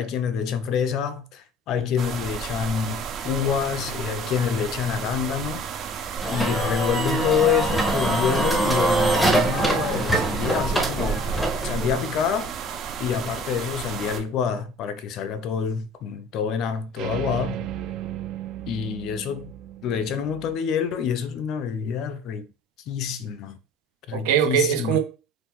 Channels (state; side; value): normal; both; correlation 0.50